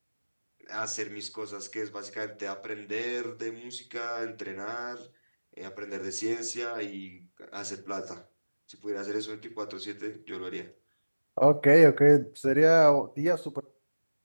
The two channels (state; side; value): inverted; both; correlation -1.00